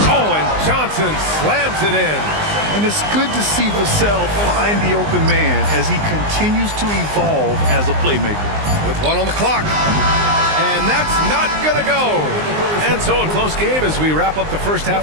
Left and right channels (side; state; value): left; late; 19 ms